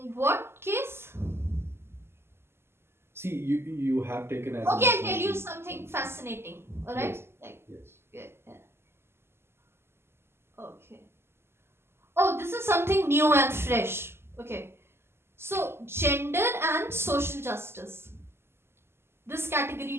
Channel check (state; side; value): late; left; 0.12 ms